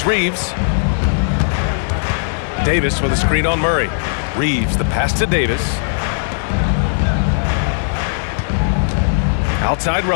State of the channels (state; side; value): silent; right; digital silence